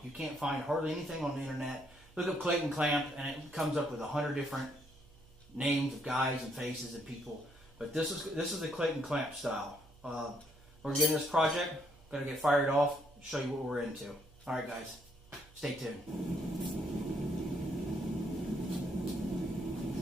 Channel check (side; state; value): right; noise; hum, 24 dB below the sound